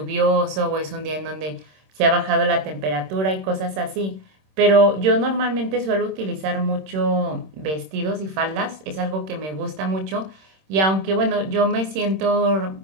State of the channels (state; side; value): late; left; 26 ms